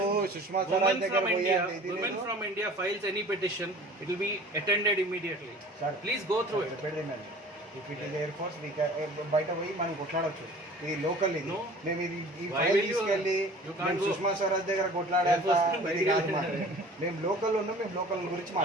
సుష్మా స్వరాజ్ దగ్గర from India files any petition, it will be attended immediately. Please go through it. If it is Air Force, we can బయట పోయి మనం కొట్లాడవచ్చు. ఇది లోకల్ ఇది మేము ఇది ఈ ఫైల్ తీసుకెళ్ళి సుష్మా స్వరాజ్ దగ్గర కొట్లాడాలి. మేము లోకల్ ఉన్నాం, మేము లోకల్ గురించి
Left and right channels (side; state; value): both; normal; correlation 0.45